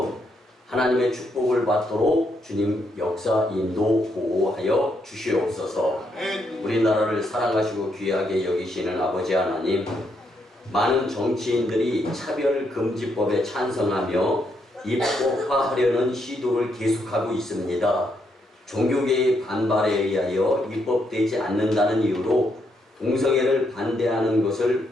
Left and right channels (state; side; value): normal; both; correlation 0.77